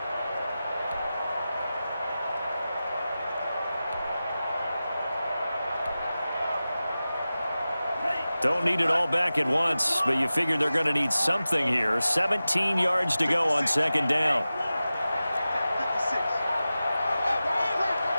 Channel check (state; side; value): inverted; both; correlation -0.95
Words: Don't need it all back at once, but you figure they're going to need something here. 17 yards to go on 2nd down.